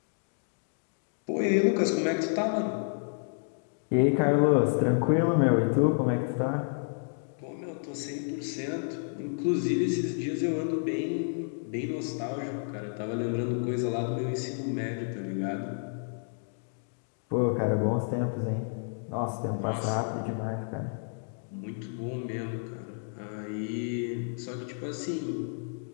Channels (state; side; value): silent; right; digital silence